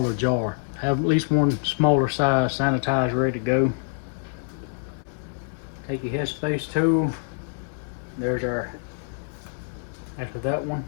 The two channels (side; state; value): right; silent; digital silence